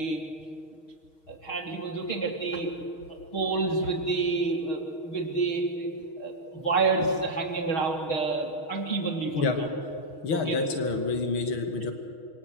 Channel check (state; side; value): late; right; 6.3 ms